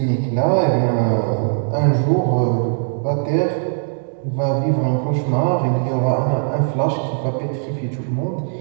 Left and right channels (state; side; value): silent; left; 65 dB below the other